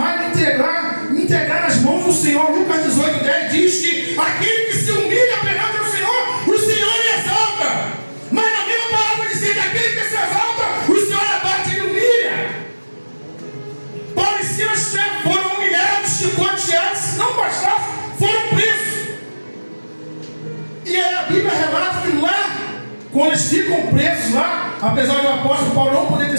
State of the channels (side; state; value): both; inverted; correlation -1.00